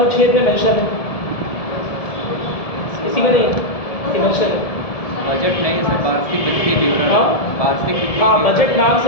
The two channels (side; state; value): right; late; 1.7 ms